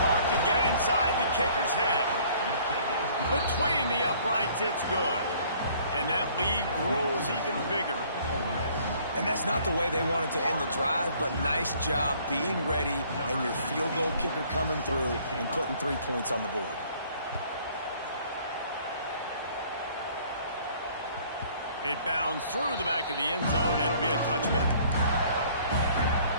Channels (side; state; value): both; inverted; correlation -0.57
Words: to get inside the kicker's head. Between the uprights, it's good. And that lead grows even bigger. And that's not the way they wanted to end the drive, but nice job being ready and your field goal kicker coming through and putting 3 points on the board. It bounds through the back of the end zone. It'll be a touchback.